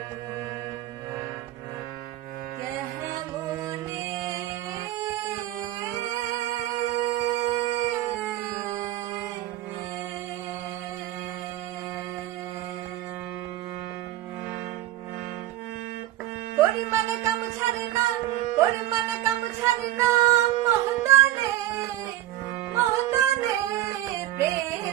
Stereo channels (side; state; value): left; quieter; 14.5 dB